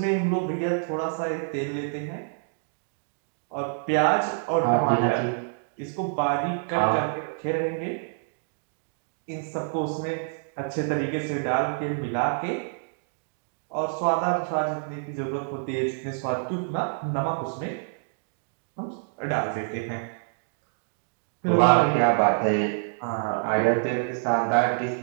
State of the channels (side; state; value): left; silent; digital silence